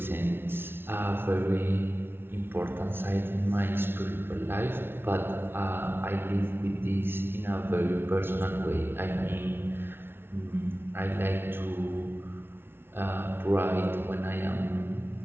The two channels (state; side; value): late; left; 0.11 ms